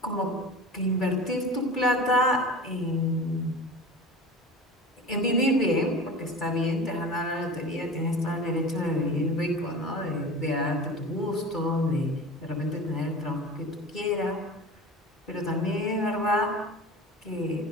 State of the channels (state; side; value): normal; both; correlation 0.34